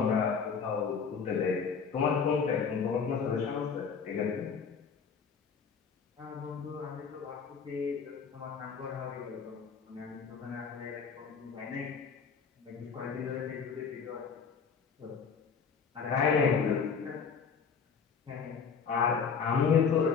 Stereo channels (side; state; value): right; quieter; 6.1 dB